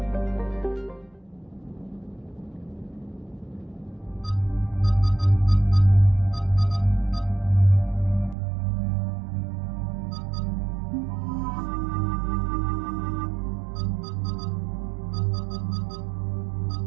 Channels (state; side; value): drops out; left; at 8.3 s